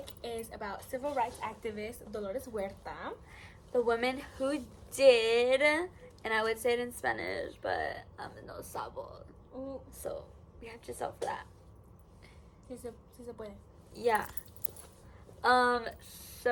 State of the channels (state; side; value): identical; both; correlation 1.00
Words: is about civil rights activist Dolores Huerta. The woman who did, and I would say it in Spanish, but no sabo. Ooh. So we have Giselle for that. Si se puede. Yeah.